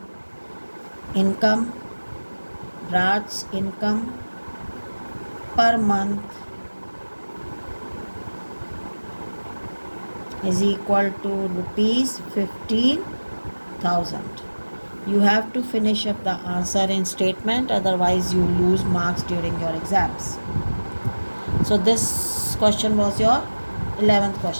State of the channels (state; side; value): inverted; both; correlation -1.00